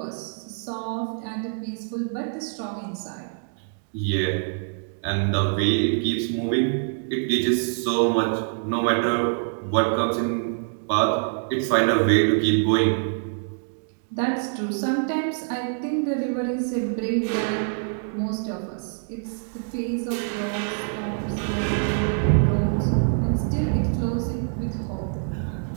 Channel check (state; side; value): silent; left; digital silence